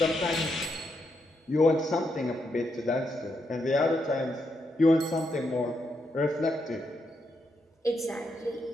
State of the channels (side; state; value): both; normal; correlation 0.81